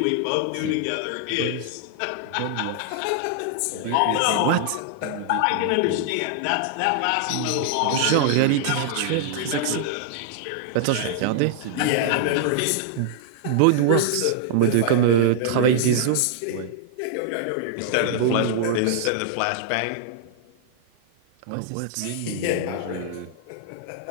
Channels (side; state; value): both; different; correlation -0.01